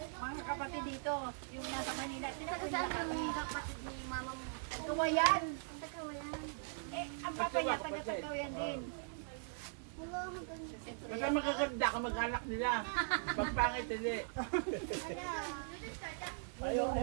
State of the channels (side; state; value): left; silent; digital silence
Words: kapatid dito. Yung nasa Manila. Tingnan ko Taga yung saan kapatid. ang kapatid ni mamang Kawayan. Taga-wayan? Eh, ang papa niya taga-Kawayan din. Wala hanggang Basta makakanda ka mag-alak nila. Pagpangit hindi. Ayaw.